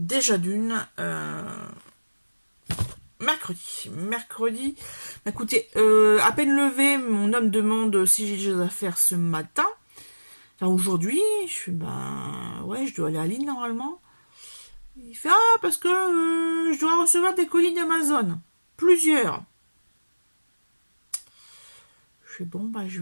d'une, mercredi, écoutez, à peine levé, mon homme demande si j'ai des choses à faire ce matin. Enfin, aujourd'hui, je fais, ouais, je dois aller à Lille normalement. Il fait, parce que je dois recevoir des colis d'Amazon. Plusieurs. Je fais, bon, je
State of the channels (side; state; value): both; inverted; correlation -1.00